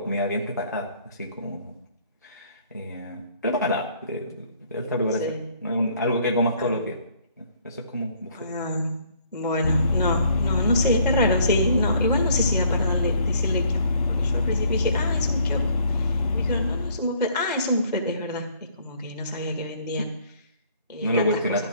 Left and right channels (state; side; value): inverted; both; correlation -0.62